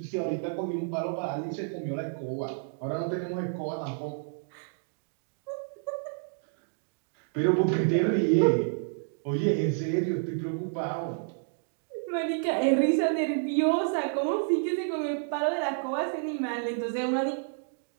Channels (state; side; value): silent; left; digital silence